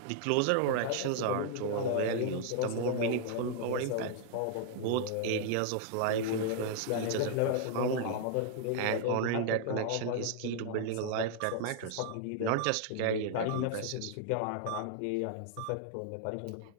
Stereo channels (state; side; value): different; both; correlation 0.00